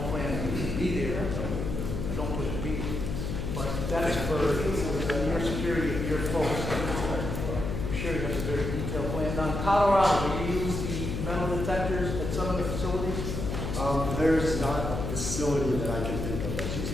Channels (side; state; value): left; noise; hum, 3 dB below the sound